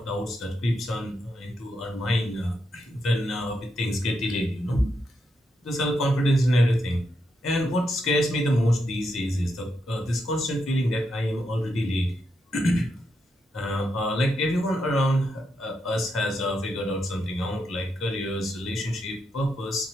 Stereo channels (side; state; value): both; normal; correlation 0.82